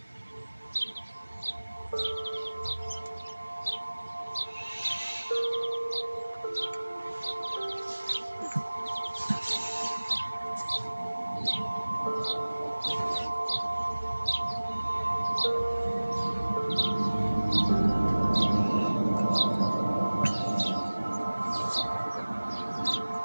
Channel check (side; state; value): both; inverted; correlation -1.00